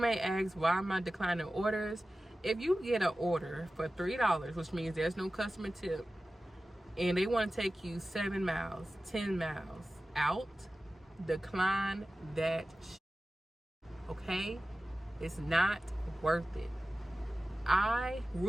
ask, why am I declining orders? If you get an order for $3, which means there's no customer tip, and they want to take you 7 miles, 10 miles out, decline that okay? It's not worth it.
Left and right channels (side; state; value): both; normal; correlation 0.95